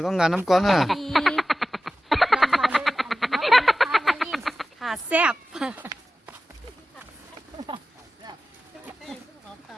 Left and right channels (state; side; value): normal; both; correlation 0.95